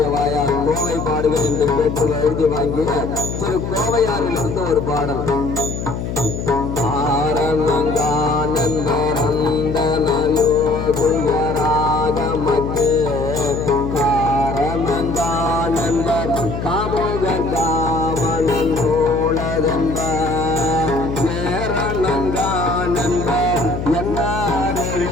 வாயால் கோவை பாடுகள் என்று கேட்டு எழுதி வாங்கிய திரு கோவையாரிலிருந்து ஒரு பாடல். ஆரணங்கானந்தரந்தனயோகுயராகமத்தே காரணங்கானந்த காமுககாமனோளதென்ப நேரணங்கானந்த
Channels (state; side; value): noise; left; hum, 5 dB below the sound